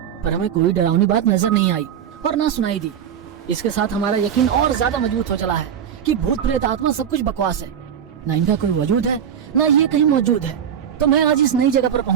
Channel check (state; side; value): quieter; left; 8.7 dB